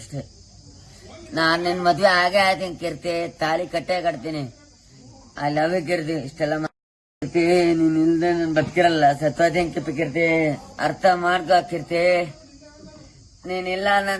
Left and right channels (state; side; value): identical; both; correlation 1.00